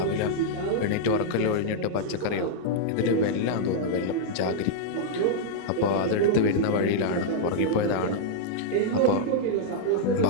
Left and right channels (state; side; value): different; both; correlation -0.02